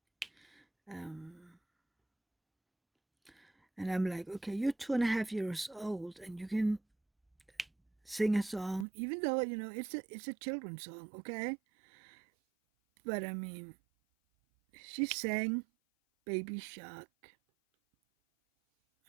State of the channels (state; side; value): drops out; left; at 8.8 s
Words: Um, and I'm like, okay, you're 2.5 years old and you can sing a song, even though it's a children's song, okay? But I mean, she sang Baby Shark.